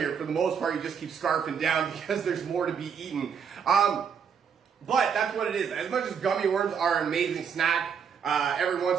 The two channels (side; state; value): left; quieter; 7.0 dB